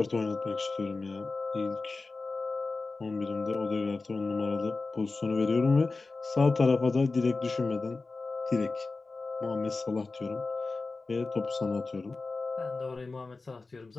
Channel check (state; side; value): quieter; right; 3.7 dB